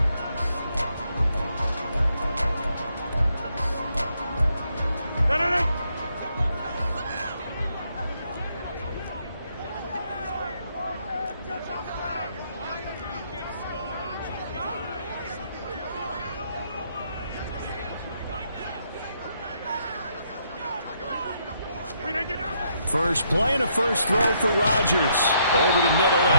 First play and a first throw for Rodgers. Over the middle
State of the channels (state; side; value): inverted; both; correlation -0.74